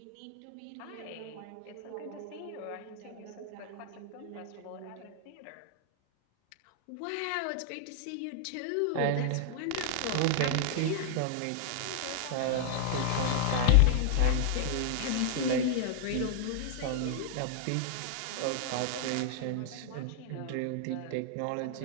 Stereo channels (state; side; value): different; both; correlation -0.01